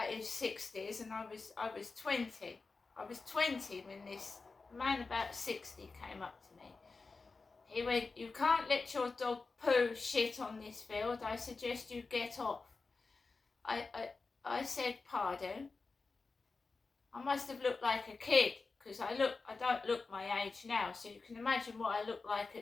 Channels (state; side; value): quieter; right; 4.1 dB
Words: his 60s, and I was 20. I was 20 when this man about 60 came up to me. He went, "You can't let your dog poo shit on this field. I suggest you get off." I said, "Pardon?" I must have looked like a kid, because I don't look my age now, so you can imagine what I look like